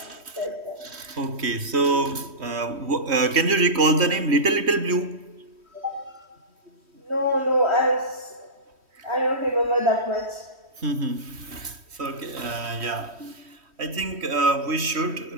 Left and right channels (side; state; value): left; late; 3.1 ms